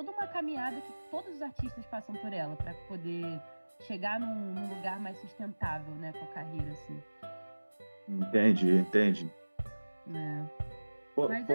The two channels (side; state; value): both; inverted; correlation -1.00